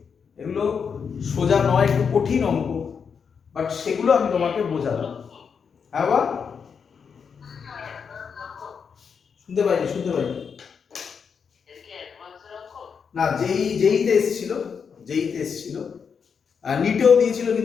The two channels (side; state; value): right; quieter; 6.4 dB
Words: এগুলো সোজা নয়, একটু কঠিন অঙ্ক, বাট সেগুলো আমি তোমাকে বোঝালাম। হ্যাঁ বা শুনতে পাইনি, শুনতে পাইনি না, যেইতে এসেছিল, যেইতে এসেছিল, আর নিটেও দিয়েছিল